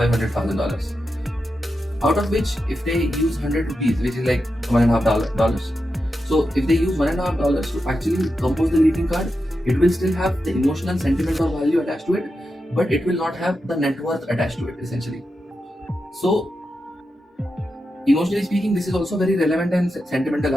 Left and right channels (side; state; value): both; normal; correlation 0.89